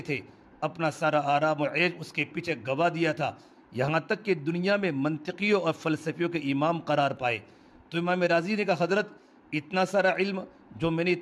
اپنا سارا آرام و عیش اس کے پیچھے گوا دیا تھا، یہاں تک کہ دنیا میں منطقیوں اور فلسفیوں کے امام قرار پائے۔ تو امام راضی نے کہا، حضرت اتنا سارا علم جو میں نے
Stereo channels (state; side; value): identical; both; correlation 1.00